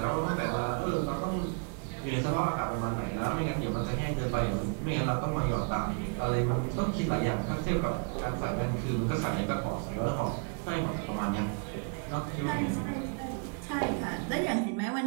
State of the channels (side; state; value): left; quieter; 39.2 dB